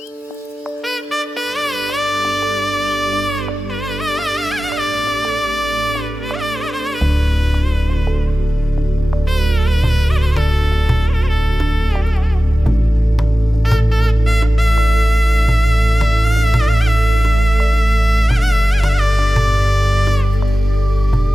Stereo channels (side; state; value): both; normal; correlation 0.95